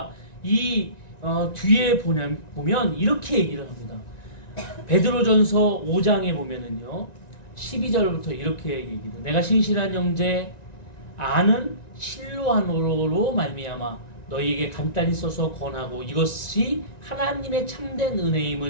이 뒤에 보면 이렇게 얘기를 합니다. 베드로전서 5장에 보면은요 12절부터 이렇게 얘기해요. 내가 신실한 형제 아는 실로아노로 말미암아 너희에게 간단히 써서 권하고 이것이 하나님의 참된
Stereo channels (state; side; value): late; right; 1.9 ms